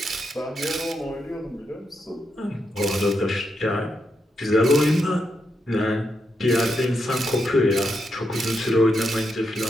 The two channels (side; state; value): both; normal; correlation 0.83